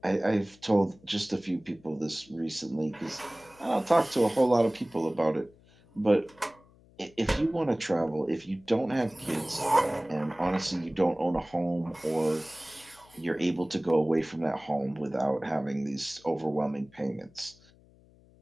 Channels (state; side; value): noise; left; hum, 27 dB below the sound